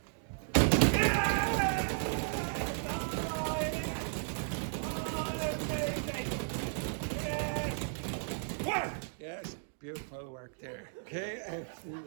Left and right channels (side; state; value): left; silent; digital silence